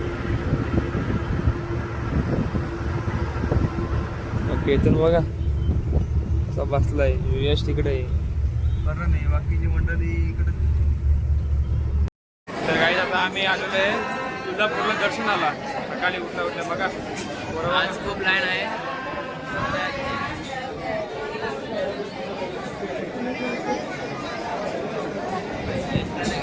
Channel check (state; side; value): identical; both; correlation 1.00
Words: केतन बघा असा बसलाय, यश तिकडे आहे, बरं नाही बाकीची मंडळी इकडे. तर काही आता आम्ही आलेलो आहे तुळजापूरला दर्शनाला. सकाळी उठल्या बघा बरोबर, आज खूप लाईन आहे.